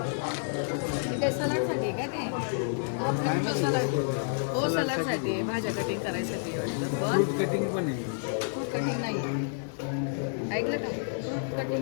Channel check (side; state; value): right; silent; 57 dB below the other